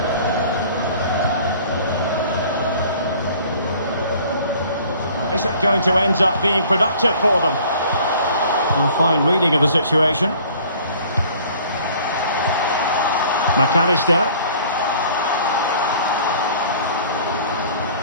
Is it going to end up being productive for them? A fine reading of the situation. McAllister.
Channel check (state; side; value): inverted; both; correlation -0.51